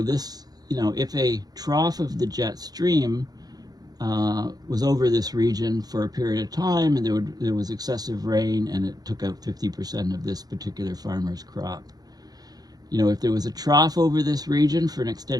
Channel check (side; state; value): left; late; 0.19 ms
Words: if a trough of the jet stream was over this region for a period of time, and there was excessive rain, and it took out 50% of this particular farmer's crop. You know, if there was a trough over this region for an